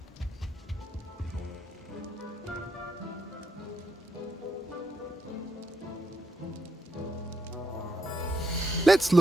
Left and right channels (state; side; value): normal; both; correlation 0.80